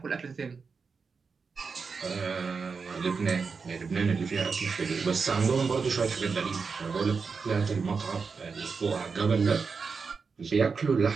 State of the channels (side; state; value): left; quieter; 5.1 dB